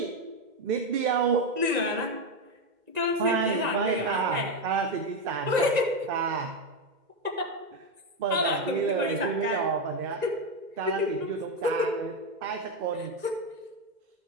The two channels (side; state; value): left; late; 1.9 ms